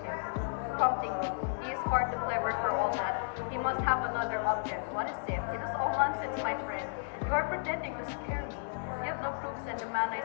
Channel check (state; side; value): silent; right; 56 dB below the other